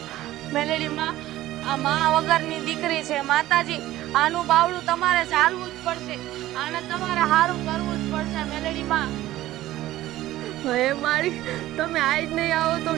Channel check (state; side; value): quieter; left; 15.2 dB